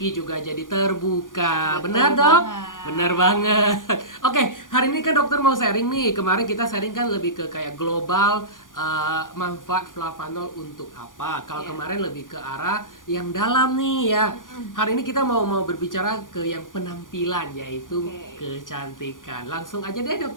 juga jadi terbuka. Betul Benar dok? banget. Benar banget. Oke, hari ini kan dokter mau sharing nih. Kemarin kita sharing kan lebih ke kayak global manfaat Flavanol untuk apa. Kalau Iya. kemarin lebih ke arah yang dalam nih ya. Hari ini kita mau berbicara ke yang penampilan, yaitu Oke. kecantikan. Langsung aja deh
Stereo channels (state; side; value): late; right; 0.89 ms